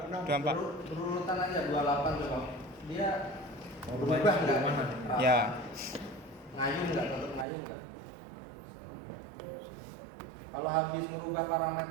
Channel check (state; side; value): drops out; left; at 7.5 s